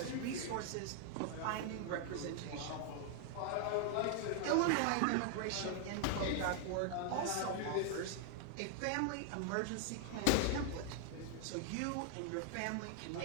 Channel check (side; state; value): both; different; correlation 0.00